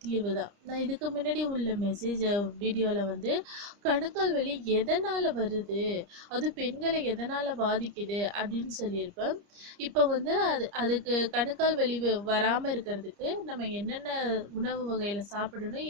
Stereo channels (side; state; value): left; late; 30 ms